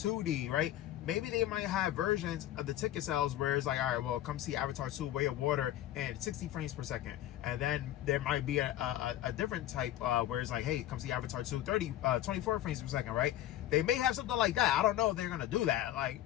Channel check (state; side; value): quieter; right; 13.2 dB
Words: right? Maybe they might have versions of the ticket sales where it's like, all right, well, come see Avatar 2 Way of Water and 60 frames per second. And then there might be a different type where it's like, hey, come see Avatar 2 24 frames per second, right? They may have something like that. I don't know if they're going to do that. Like,